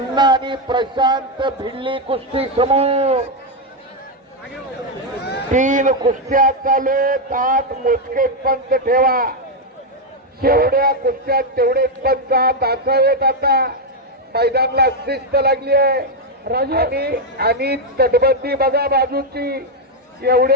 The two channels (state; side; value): normal; both; correlation 0.03